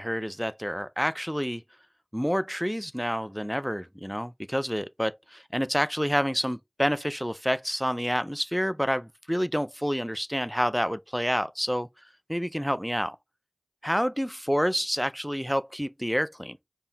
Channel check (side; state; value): both; identical; correlation 1.00